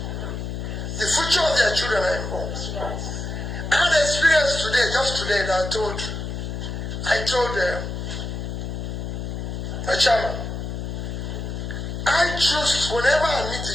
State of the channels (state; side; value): noise; left; hum, 5 dB below the sound